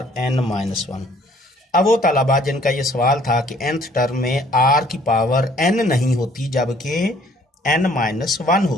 N minus one. अब वो तलबा जिनका ये सवाल था कि nth टर्म में आर की पावर n नहीं होती जबकि n माइनस वन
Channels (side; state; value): both; normal; correlation 0.59